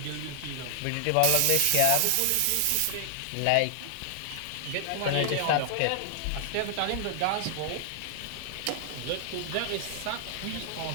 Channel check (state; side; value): different; both; correlation 0.00